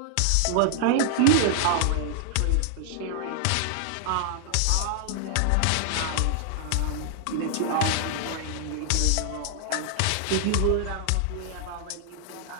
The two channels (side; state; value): both; different; correlation -0.01